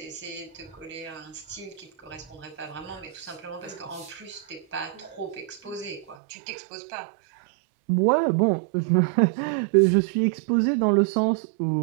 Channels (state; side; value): drops out; left; at 6.2 s